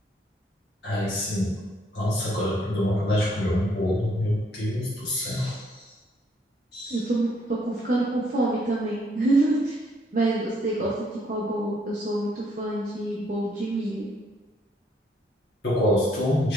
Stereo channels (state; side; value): normal; both; correlation 0.68